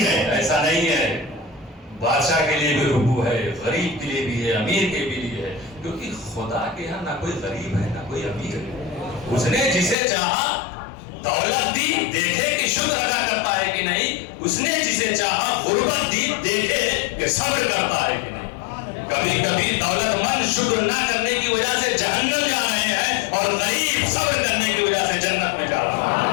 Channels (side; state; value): right; drops out; at 10.0 s